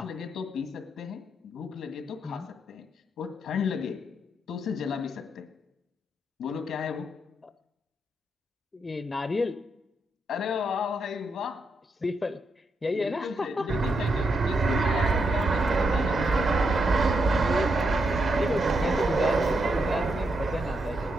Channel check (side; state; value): both; normal; correlation 0.81